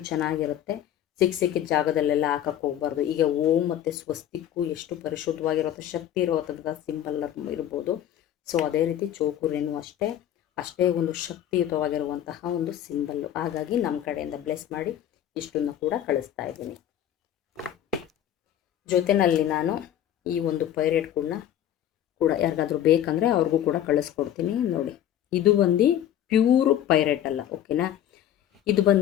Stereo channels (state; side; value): quieter; right; 11.1 dB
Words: ಚೆನ್ನಾಗಿರುತ್ತೆ. ಸಿಕ್ಕಿದ ಜಾಗದಲ್ಲೆಲ್ಲ ಹಾಕಕ್ಕೆ ಹೋಗ್ಬಾರ್ದು. ಈಗ ಓಂ ಮತ್ತು ಸ್ವಸ್ತಿಕ್ಕು ಎಷ್ಟು ಪರಿಶುದ್ಧವಾಗಿರುತ್ತೋ, ಶಕ್ತಿ ಇರುವಂಥ ಸಿಂಬಲ್ ಇರ್ಬೋದು. ಸೊ ಅದೇ ರೀತಿ ಚೋಕುರೇನು ಅಷ್ಟೇ ಒಂದು ಶಕ್ತಿಯುತವಾಗಿರುವಂತಹ ಒಂದು ಸಿಂಬಲ್ಲು. ಹಾಗಾಗಿ ನಮ್ಮ ಕಡೆಯಿಂದ ಬ್ಲೆಸ್ ಮಾಡಿ ಇಷ್ಟನ್ನು ಕೂಡ ಕಳಿಸ್ತಾ ಇದ್ದೀನಿ. ಜೊತೆಯಲ್ಲಿ ನಾನು ಈ ಒಂದು ಪೈರೇಟ್ಗಳನ್ನ ಕೂಡ ಯಾರಿಗಾದ್ರೂ ಬೇಕಂದರೆ ಅವ್ರಿಗೂ ಕೂಡ ಕಳಿಸ್ಕೊಡ್ತೀನಿ. ನೋಡಿ, ಇದು ಬಂದು ಪ್ಯೂರು ಪೈರೇಟ್ ಅಲ್ಲ, ಓಕೆನಾ. ಇದು